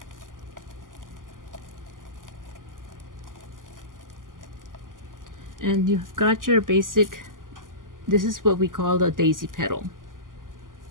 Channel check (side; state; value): left; late; 0.90 ms